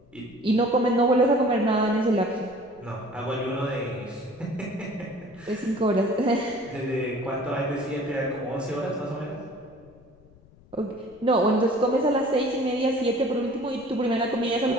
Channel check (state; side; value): noise; left; rumble, 26 dB below the sound